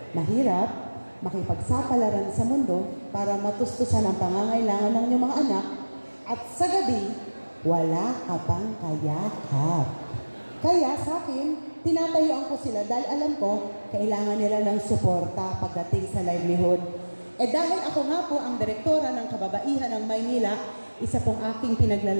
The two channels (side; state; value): both; inverted; correlation -1.00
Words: Mahirap makipagsapalaran sa mundo para matustusan ang pangangailangan ng inyong mga anak at sa gabi, wala ka pang kayakap. Kaya sa akin, tinatayuan ko sila dahil alam ko, kailangan nila ng suporta pagdating sa livelihood. Dahil ako nga po ang direktora ng Kababaihan ng Maynila, isa pong aking